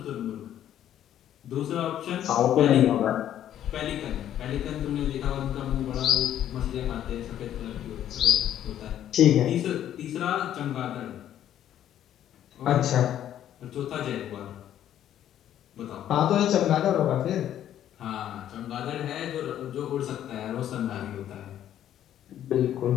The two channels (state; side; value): quieter; right; 11.1 dB